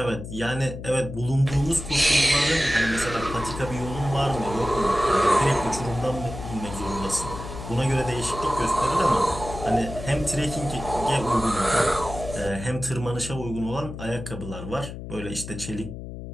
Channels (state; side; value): noise; left; hum, 10 dB below the sound